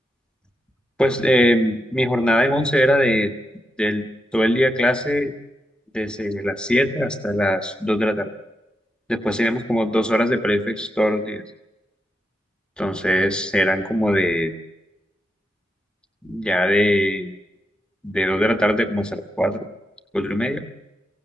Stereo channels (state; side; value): normal; both; correlation 0.85